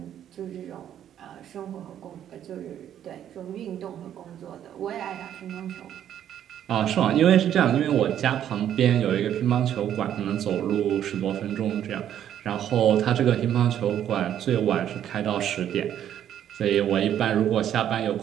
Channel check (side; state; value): left; quieter; 10.4 dB